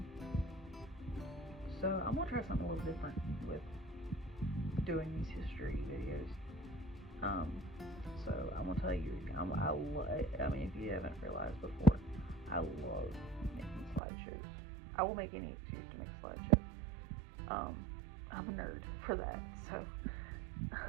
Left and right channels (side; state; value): left; drops out; at 14.0 s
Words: so I'm gonna try something a little different with doing these history videos. Um, so I'm gonna tell you, I mean, if you haven't realized before, I love making slideshows. I will make any excuse to make slideshows. I'm a nerd for that.